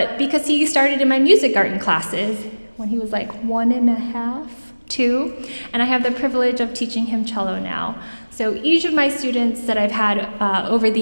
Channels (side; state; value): both; inverted; correlation -1.00